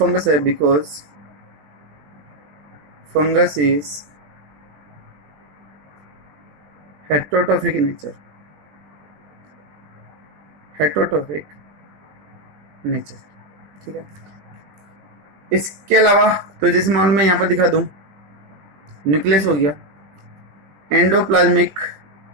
है, because fungus is heterotrophic nature, heterotrophic nature. ठीक है, इसके अलावा तो जैसे मान मैं यहाँ पर दिखा दूं, न्यूक्लियस हो गया, एंडोप्लाज्मिक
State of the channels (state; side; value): late; left; 20 ms